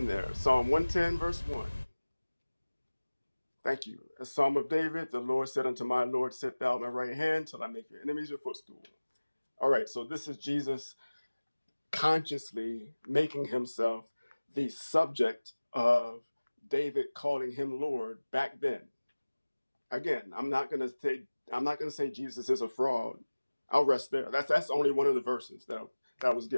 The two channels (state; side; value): inverted; both; correlation -1.00